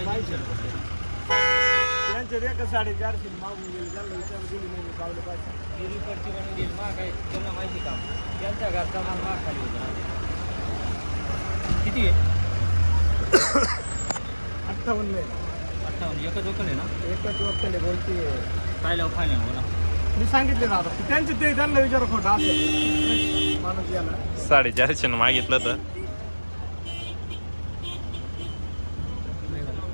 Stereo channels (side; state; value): both; inverted; correlation -1.00